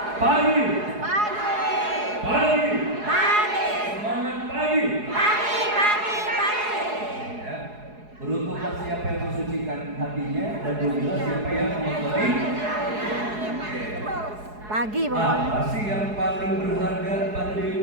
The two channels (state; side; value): late; left; 4.8 ms